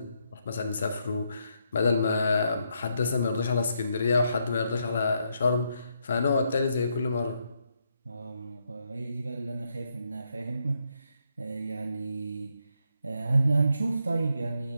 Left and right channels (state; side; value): inverted; both; correlation -0.78